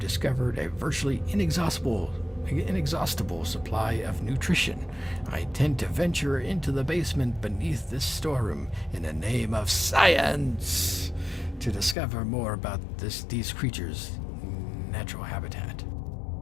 a virtually inexhaustible supply of nutrition. I intend to venture into the basement beneath this storeroom in the name of science to discover more about these creatures' natural habitat.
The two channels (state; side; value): drops out; right; at 12.0 s